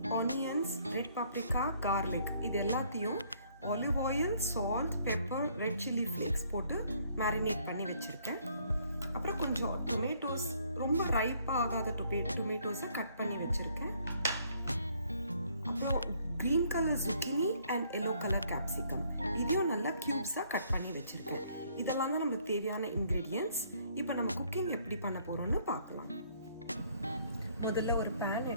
ஆனியன்ஸ், ரெட் பாப்ரிகா, கார்லிக், இது எல்லாத்தையும் olive oil, salt, pepper, red chilli flakes போட்டு மேரினேட் பண்ணி வச்சுருக்கேன். அப்புறம் கொஞ்சம் டொமேட்டோஸ், ரொம்ப ரைப்பாக ஆகாத டொமேட்டோஸை கட் பண்ணி வச்சுருக்கேன். அப்புறம் green colour zucchini and yellow colour capsicum, இதையும் நல்லா க்யூப்ஸாக கட் பண்ணி வச்சுருக்கேன். இதெல்லாம் தான் நமக்கு தேவையான இன்க்ரீடியன்ட்ஸ். இப்போ நம்ம குக்கிங் எப்படி பண்ண போகிறோம்னு பார்க்கலாம். முதல்ல ஒரு பேன்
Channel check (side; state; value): both; inverted; correlation -0.64